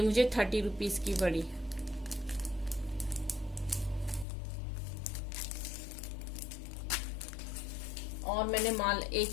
मुझे 30 रुपीज की पड़ी। और मैंने माल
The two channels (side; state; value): right; drops out; at 4.2 s